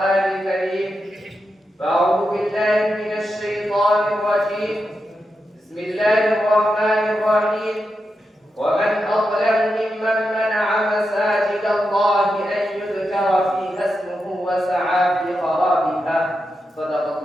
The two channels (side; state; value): both; normal; correlation 0.87